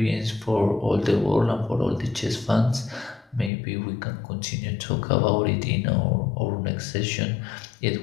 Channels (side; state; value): right; drops out; at 3.5 s